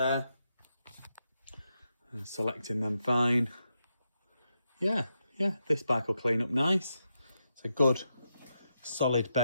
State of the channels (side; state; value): both; inverted; correlation -0.85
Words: And selecting them fine. Yeah, this bike will clean up nice. It's a good solid